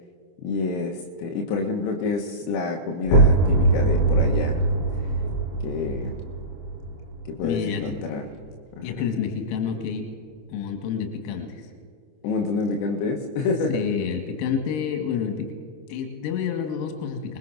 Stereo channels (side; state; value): right; late; 26 ms